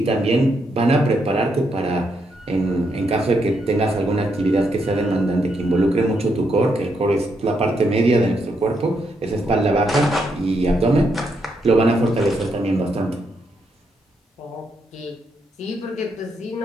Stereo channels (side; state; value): both; normal; correlation 0.78